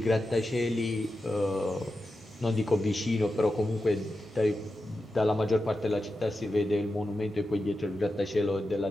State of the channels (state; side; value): normal; both; correlation 0.90